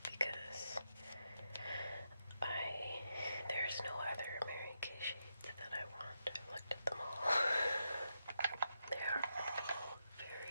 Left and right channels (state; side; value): inverted; both; correlation -0.85